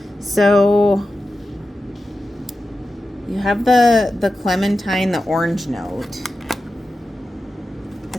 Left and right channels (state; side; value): normal; both; correlation 0.92